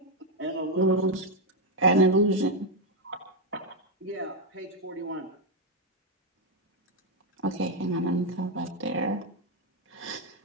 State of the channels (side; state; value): both; normal; correlation 0.02